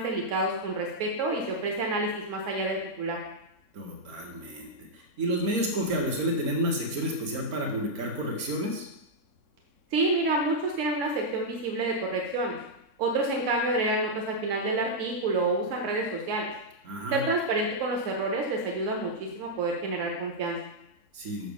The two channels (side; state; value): left; late; 3.6 ms